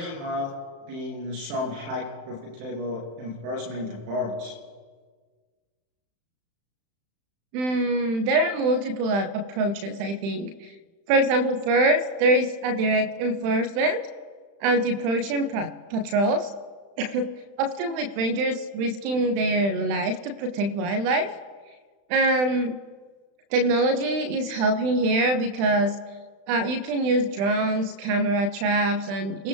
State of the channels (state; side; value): late; left; 35 ms